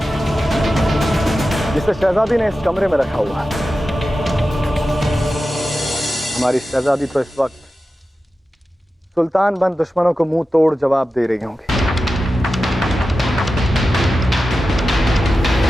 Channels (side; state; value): both; normal; correlation 0.93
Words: जिसे शहजादी ने इस कमरे में रखा हुआ है। हमारी शहजादी तो इस वक्त सुल्तान बंद दुश्मनों को मुंह तोड़ जवाब दे रही होंगी।